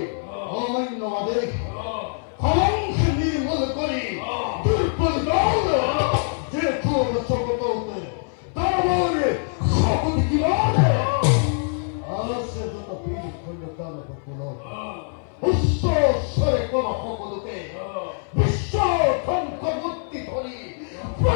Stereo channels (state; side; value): silent; right; 61 dB below the other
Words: অমান্য আদেশ কলঙ্ক নির্মূল করি দুর্বল দল যে তোর সকত হতে তারপরে শপথ কি বলে আসে যত বীর খন্ড কাল হল উচ্চ স্বরে কোন সকলকে বিশ্ব ধ্বংস মূর্তি ধরি